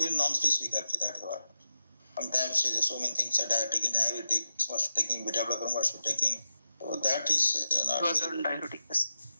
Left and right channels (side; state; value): both; inverted; correlation -0.91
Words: non-specific actually. That's what. Sometimes so many things are diabetics must be taking, beta blocker must be taking. So that is not. It was on diabetic.